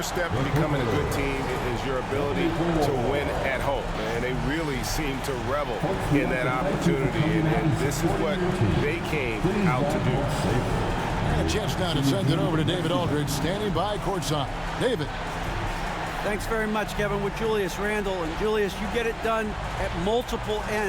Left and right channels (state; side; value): identical; both; correlation 1.00